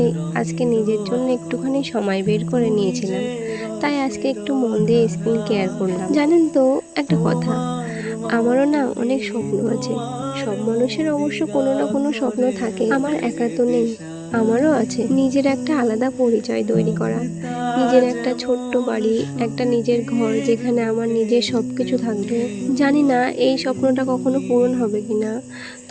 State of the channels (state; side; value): identical; both; correlation 1.00